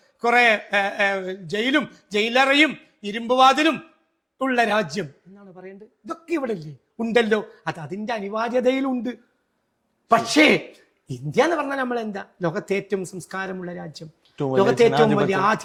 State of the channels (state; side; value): identical; both; correlation 1.00